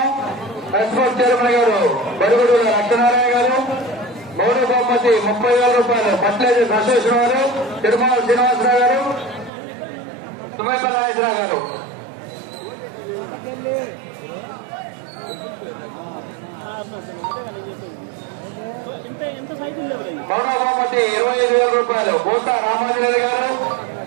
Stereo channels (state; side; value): drops out; left; at 9.5 s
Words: ఎస్పోర్ట్ చైర్మన్ గారు బడుగుడు లక్ష్మీనారాయణ గారు. మూడో బహుమతి 30,000 రూపాయలు పట్లేజీ సశేష్ గారు, తిరుమల శ్రీనివాసరావు గారు, తుమ్మపల్లి నాగేశ్వరరావు గారు. మూడో బహుమతి 25,000 రూపాయలు బోసా రామాజరెడ్డి గారు,